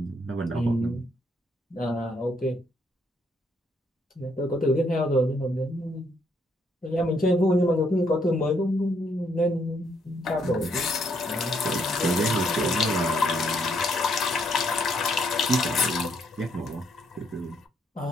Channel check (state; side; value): normal; both; correlation 0.72